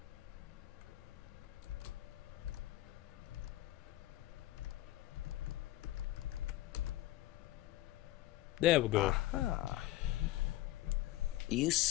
There we go. Aha. You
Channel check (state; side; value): quieter; right; 15.7 dB